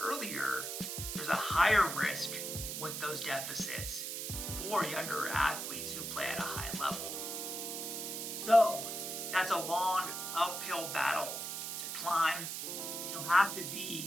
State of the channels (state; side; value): noise; right; hiss, 4 dB below the sound